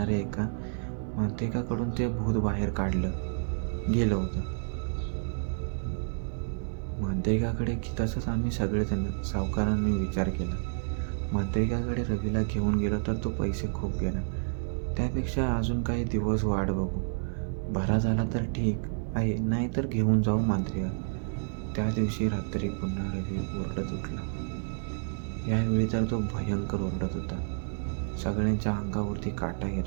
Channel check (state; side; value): silent; left; 58 dB below the other